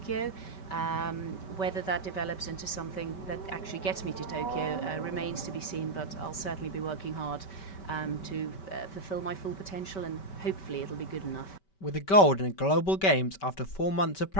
Whether that develops into something that actually gets me to Tokyo remains to be seen, but I'll certainly be working hard to fulfill my full potential, and hopefully it'll be good enough. With a gold in the Global Games after 4 months of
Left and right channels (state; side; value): late; right; 5.2 ms